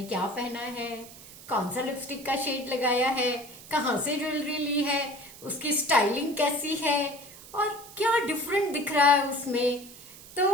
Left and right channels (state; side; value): noise; right; hiss, 18 dB below the sound